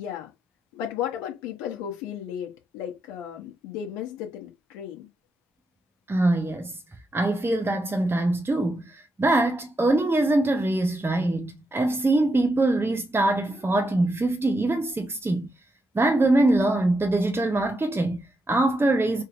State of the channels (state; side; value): normal; both; correlation 0.84